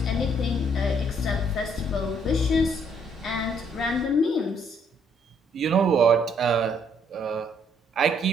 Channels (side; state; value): both; normal; correlation 0.67